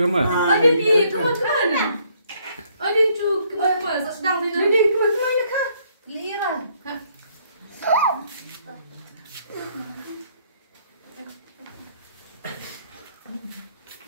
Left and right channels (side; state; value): both; inverted; correlation -0.67